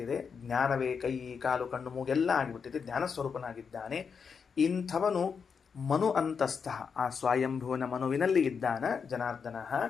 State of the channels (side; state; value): right; quieter; 6.1 dB